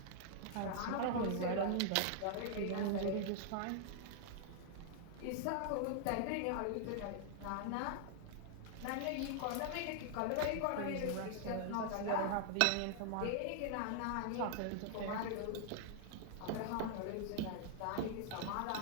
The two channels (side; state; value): both; different; correlation -0.01